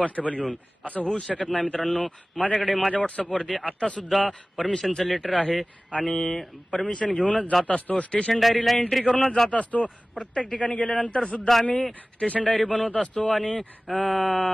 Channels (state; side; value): normal; both; correlation 0.98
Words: घेऊन. असं होऊ शकत नाही मित्रांनो. माझ्याकडे माझ्या व्हॉट्सअपवरती आता सुद्धा परमिशनचं लेटर आहे आणि परमिशन घेऊनच जात असतो. स्टेशन डायरीला एंट्री करूनच जात असतो. प्रत्येक ठिकाणी गेल्यानंतर सुद्धा आम्ही स्टेशन डायरी बनवत असतो आणि